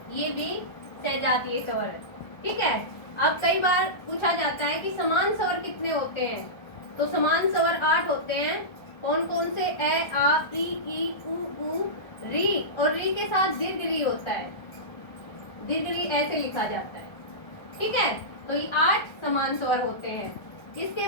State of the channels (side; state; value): right; late; 1.5 ms